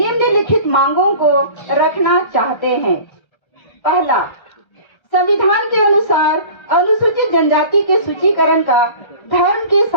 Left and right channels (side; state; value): right; late; 1.3 ms